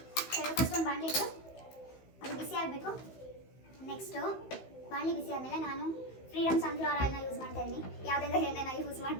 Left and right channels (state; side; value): late; right; 15 ms